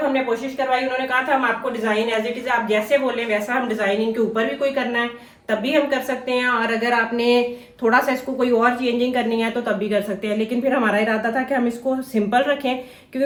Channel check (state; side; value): identical; both; correlation 1.00